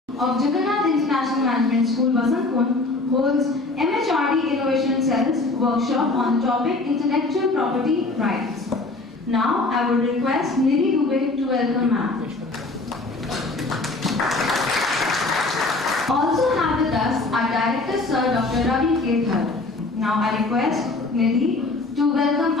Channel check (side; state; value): right; quieter; 3.3 dB